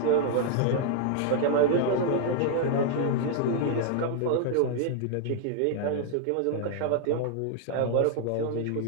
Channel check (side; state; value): both; different; correlation -0.01